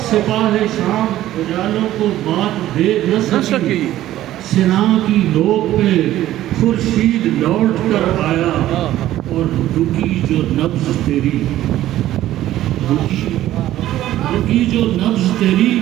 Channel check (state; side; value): quieter; left; 13.9 dB